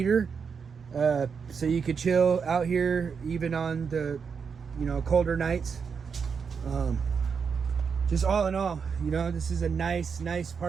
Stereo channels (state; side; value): quieter; left; 6.1 dB